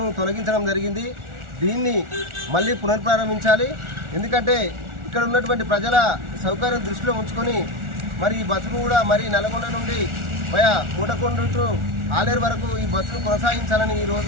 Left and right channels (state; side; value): late; left; 1.4 ms